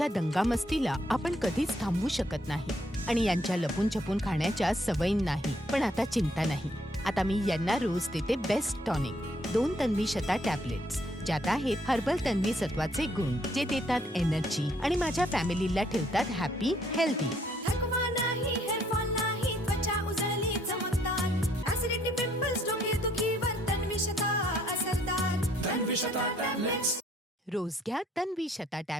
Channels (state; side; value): normal; both; correlation 0.67